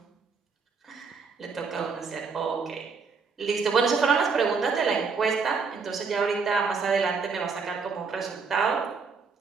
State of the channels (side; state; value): left; quieter; 5.1 dB